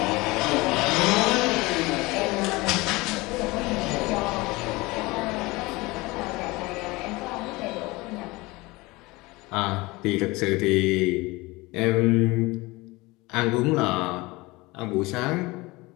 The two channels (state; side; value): quieter; right; 22.5 dB